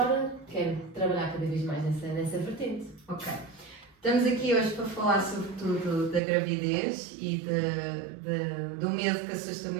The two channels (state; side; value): drops out; left; at 6.2 s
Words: quero trabalhar cada vez mais nessa vertente. Ok. Estamos aqui hoje para falar sobretudo da gravidez e do medo que assusta